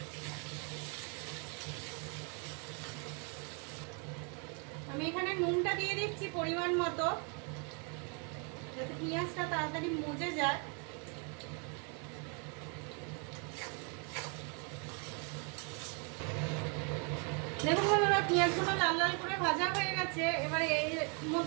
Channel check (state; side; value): quieter; left; 37.0 dB